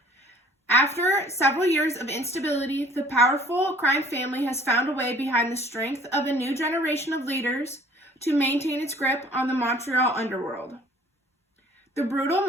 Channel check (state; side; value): normal; both; correlation 0.53